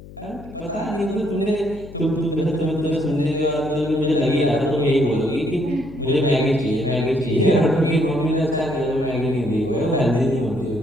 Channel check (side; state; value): left; noise; hum, 18 dB below the sound